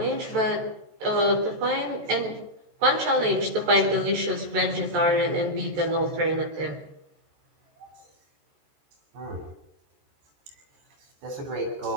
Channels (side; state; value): left; late; 14 ms